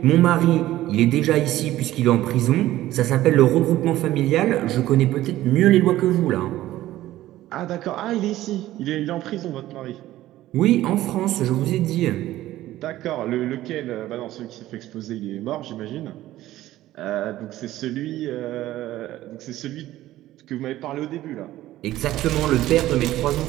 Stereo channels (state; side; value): quieter; left; 15.0 dB